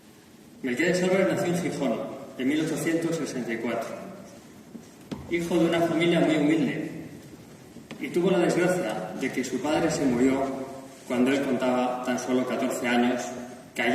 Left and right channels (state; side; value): identical; both; correlation 1.00